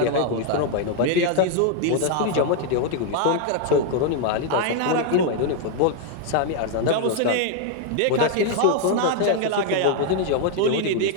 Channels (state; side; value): different; both; correlation 0.00